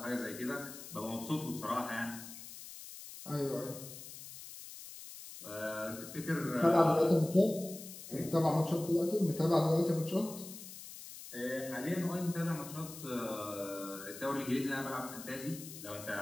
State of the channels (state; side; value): noise; left; hiss, 13 dB below the sound